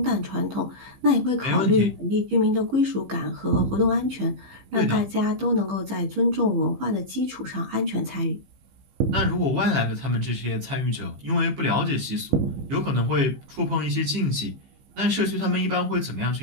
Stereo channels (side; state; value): left; late; 15 ms